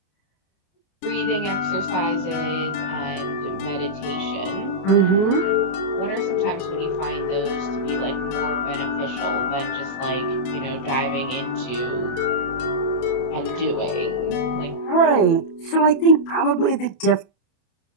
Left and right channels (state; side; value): late; right; 29 ms